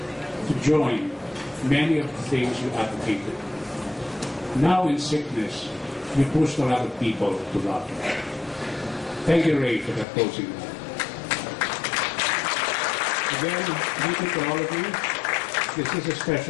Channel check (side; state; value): right; drops out; at 10.1 s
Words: to join many of the things you advocated. Now in sickness, you pushed a lot of people to love. Thank you, Ray, for that closing. Again, thank you to all of you. This is a